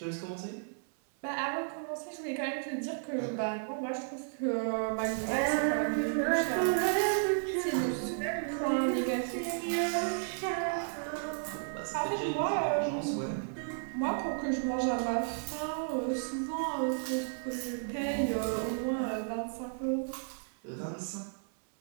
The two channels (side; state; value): left; silent; 56 dB below the other